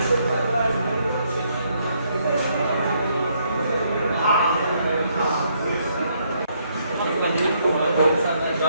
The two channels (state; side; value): inverted; both; correlation -0.72